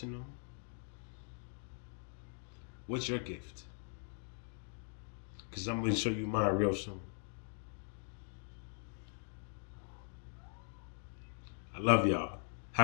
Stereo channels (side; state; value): right; silent; 51 dB below the other